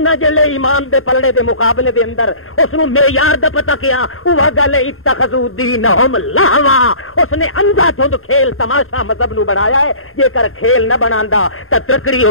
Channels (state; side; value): late; right; 0.61 ms